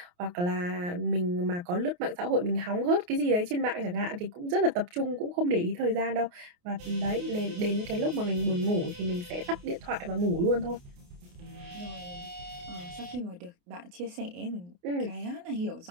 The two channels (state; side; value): late; left; 28 ms